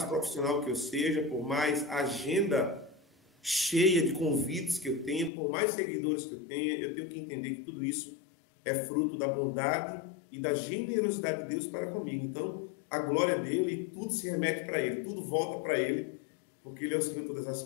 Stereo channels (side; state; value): right; drops out; at 5.3 s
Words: profissional que eu seja, por mais agenda cheia de convites que eu tenha, por mais seguidores que eu tenha, eu tenho que entender que tudo isso é fruto da bondade e da generosidade de Deus para comigo. Então, a glória dele, tudo se remete para ele, tudo volta para ele, porque ele é o Senhor de todas as